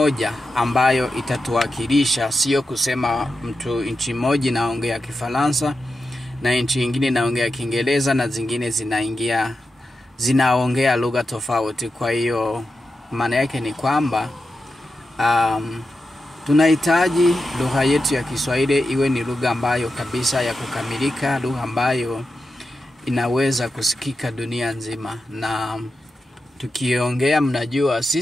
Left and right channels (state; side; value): normal; both; correlation 0.89